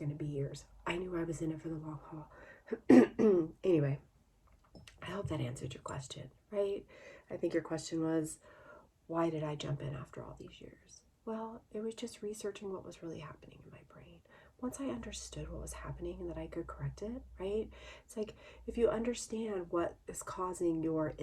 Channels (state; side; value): identical; both; correlation 1.00